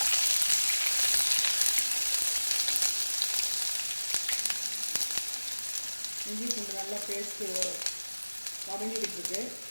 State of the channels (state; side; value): inverted; both; correlation -1.00